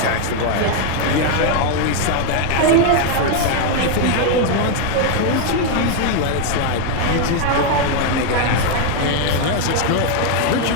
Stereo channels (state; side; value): different; both; correlation 0.01